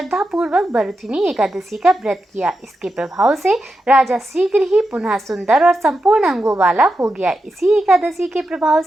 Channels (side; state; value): both; normal; correlation 0.88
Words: पूर्वक बरथुनी एकादशी का व्रत किया। इसके प्रभाव से राजा शीघ्र ही पुनः सुंदर और संपूर्ण अंगों वाला हो गया। इसी एकादशी के प्रभाव